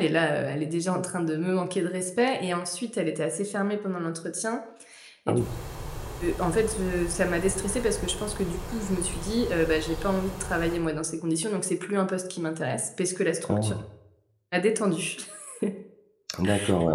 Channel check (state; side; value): identical; both; correlation 1.00